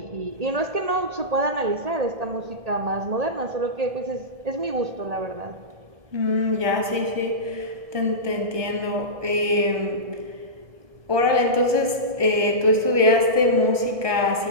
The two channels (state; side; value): late; left; 1.2 ms